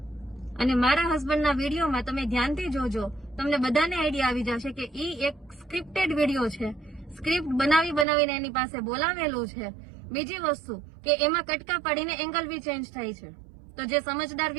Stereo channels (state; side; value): drops out; left; at 8.1 s